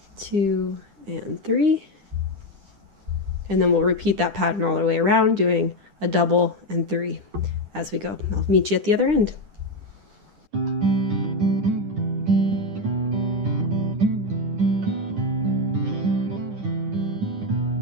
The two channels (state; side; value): late; left; 9.9 ms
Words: 2, and 3. And then we'll repeat that pattern all the way around, doing a double and 3 as we go. I'll meet you at the other end.